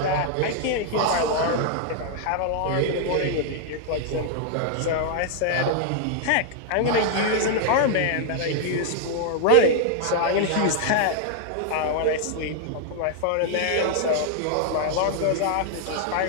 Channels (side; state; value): both; different; correlation -0.01